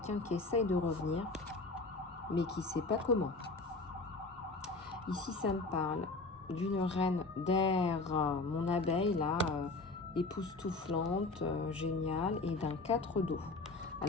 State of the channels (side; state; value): right; quieter; 3.4 dB